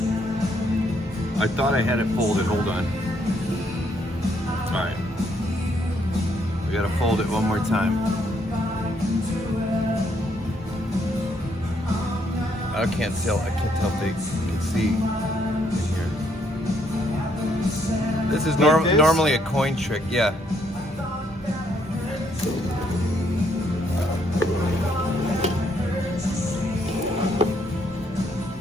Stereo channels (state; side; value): normal; both; correlation 0.71